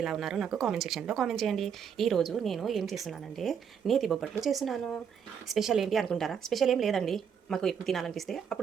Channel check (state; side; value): quieter; left; 7.5 dB